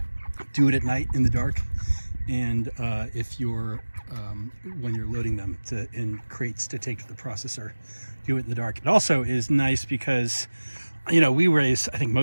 do it at night in the dark, and if you're when you're loading them in crates to take to the processor, do it in the dark. It also is nice because, you know, I think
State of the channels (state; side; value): inverted; both; correlation -1.00